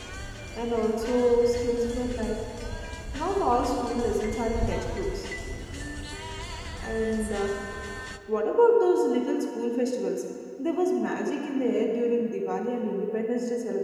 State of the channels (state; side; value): identical; both; correlation 1.00